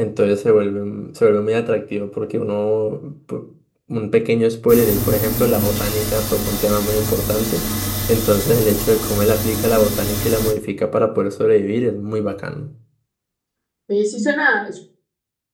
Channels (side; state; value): both; identical; correlation 1.00